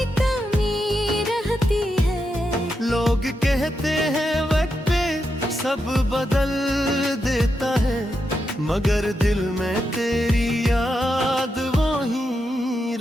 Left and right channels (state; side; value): normal; both; correlation 0.85